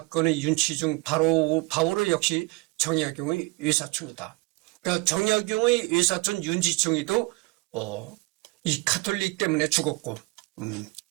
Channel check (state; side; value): quieter; left; 24.9 dB